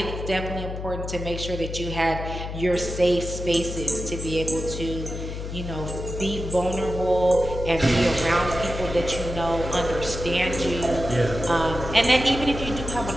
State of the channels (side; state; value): left; noise; hum, 7 dB below the sound